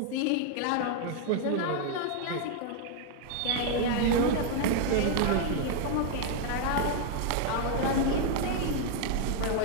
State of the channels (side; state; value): both; different; correlation 0.00